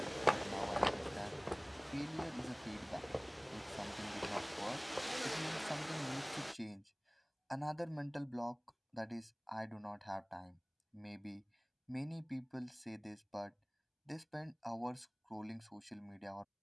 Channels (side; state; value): both; identical; correlation 1.00